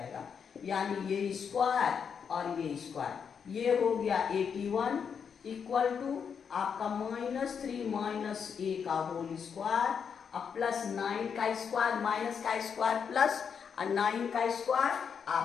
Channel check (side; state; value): right; quieter; 6.8 dB